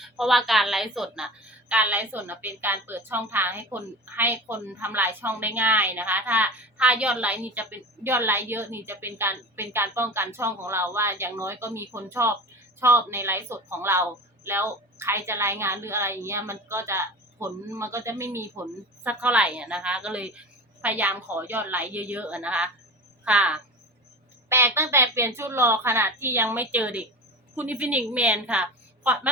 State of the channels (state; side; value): normal; both; correlation 0.32